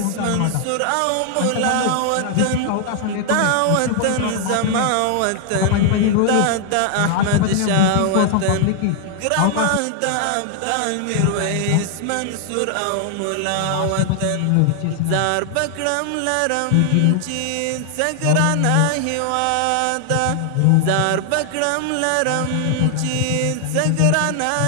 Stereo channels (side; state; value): both; different; correlation 0.00